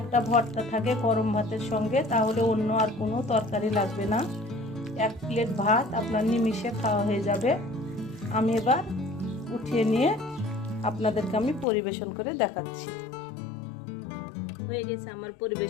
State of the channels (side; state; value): right; drops out; at 11.7 s